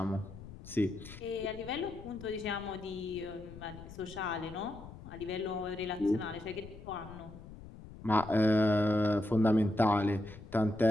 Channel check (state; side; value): noise; left; rumble, 15 dB below the sound